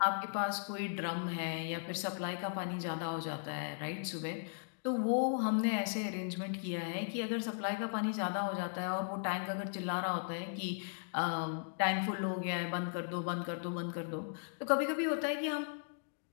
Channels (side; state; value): right; silent; digital silence